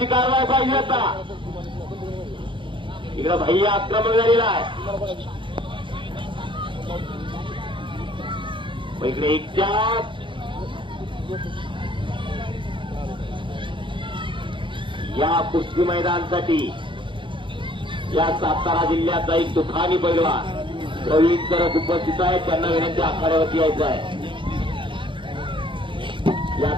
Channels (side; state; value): left; late; 0.24 ms